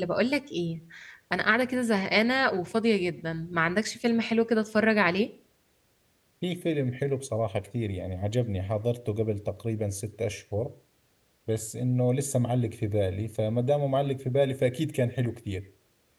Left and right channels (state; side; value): identical; both; correlation 1.00